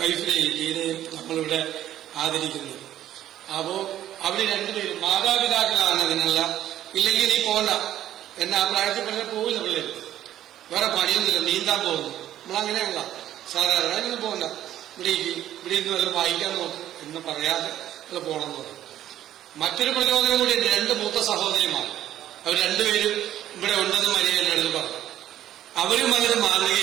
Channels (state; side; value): quieter; left; 12.2 dB